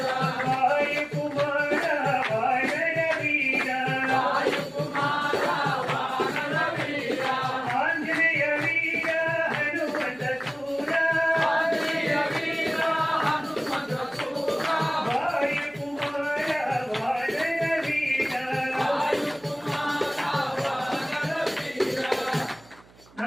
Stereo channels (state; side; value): noise; right; hum, 26 dB below the sound